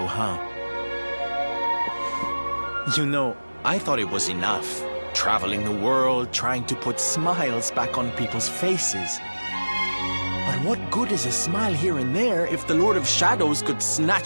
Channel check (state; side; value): inverted; both; correlation -1.00